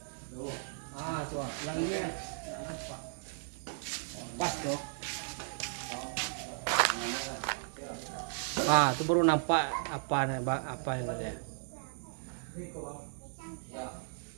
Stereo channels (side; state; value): left; silent; 54 dB below the other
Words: Tuh. Ah, tuh. Yang ini ya. Pas tuh. Ah, itu baru nampak apa yang ada. Ya.